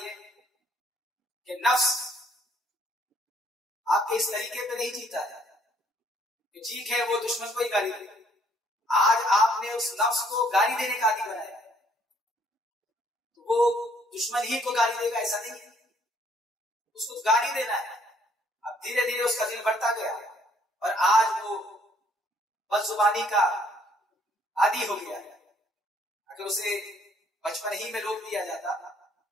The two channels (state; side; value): normal; both; correlation 0.64